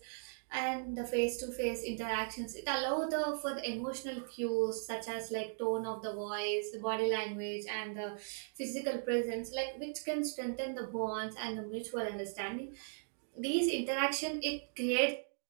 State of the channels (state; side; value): silent; left; digital silence